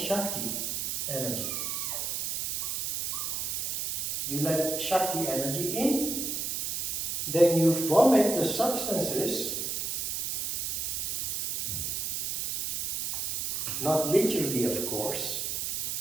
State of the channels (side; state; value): right; noise; hiss, 1 dB below the sound